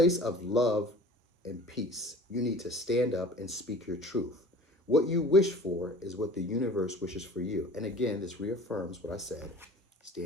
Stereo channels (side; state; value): both; normal; correlation 0.43